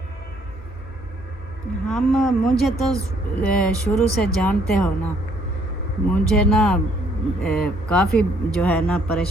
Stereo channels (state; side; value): normal; both; correlation 0.65